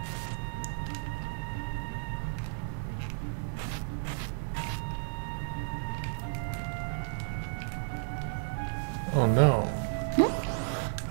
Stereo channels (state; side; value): silent; left; 56 dB below the other